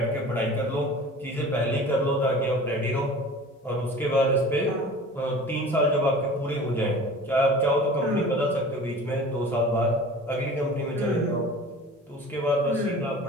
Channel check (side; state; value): both; normal; correlation 0.41